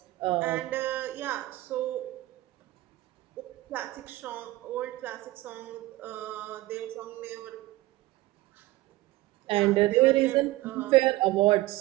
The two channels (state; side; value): quieter; left; 18.2 dB